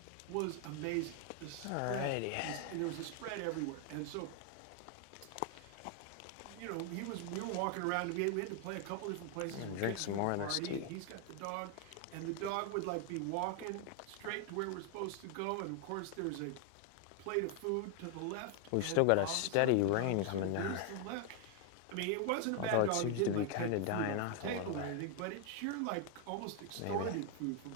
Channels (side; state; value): both; different; correlation 0.00